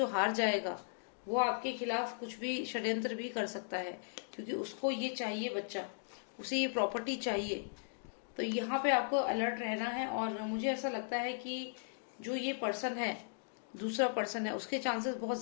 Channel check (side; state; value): right; silent; digital silence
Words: हार जाएगा वो आपके खिलाफ कुछ भी षड्यंत्र भी कर सकता है, क्योंकि उसको ये चाहिए बच्चा, उसे ये प्रॉपर्टी चाहिए। तो यहाँ पे आपको अलर्ट रहना है। और मुझे ऐसा लगता है कि जो ये पर्सन है, दूसरा पर्सन है, उसके चांसेस बहुत